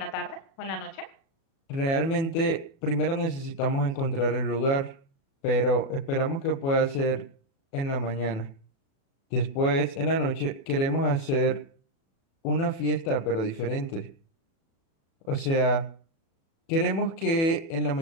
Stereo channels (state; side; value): late; right; 36 ms